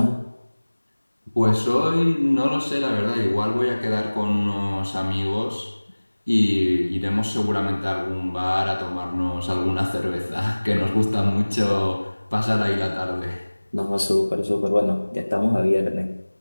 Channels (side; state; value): both; inverted; correlation -1.00